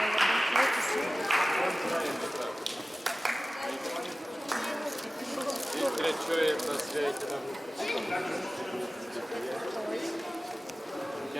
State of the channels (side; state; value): both; normal; correlation 0.97